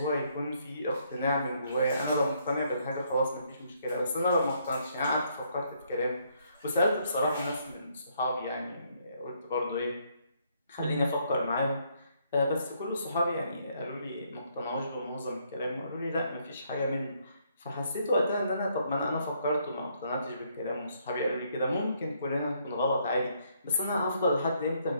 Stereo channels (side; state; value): both; inverted; correlation -0.71